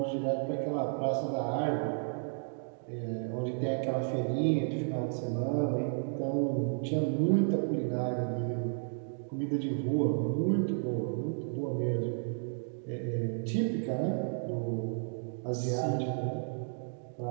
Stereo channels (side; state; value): left; silent; digital silence